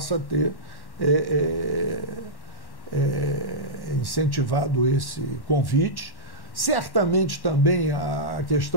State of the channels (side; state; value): right; late; 1.1 ms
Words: ter incentivado esse convite. Certamente também a